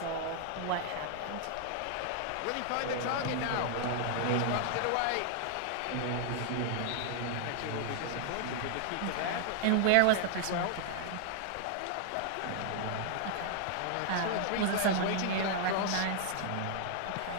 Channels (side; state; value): both; different; correlation 0.00